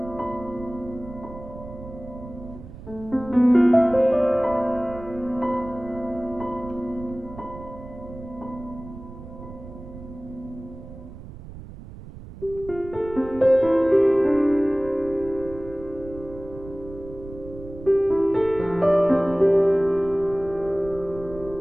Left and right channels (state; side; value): noise; right; rumble, 15 dB below the sound